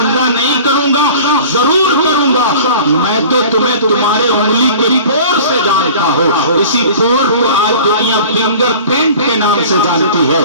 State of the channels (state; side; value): inverted; both; correlation -0.42